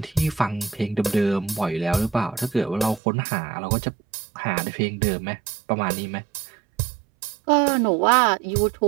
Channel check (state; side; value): drops out; left; at 3.0 s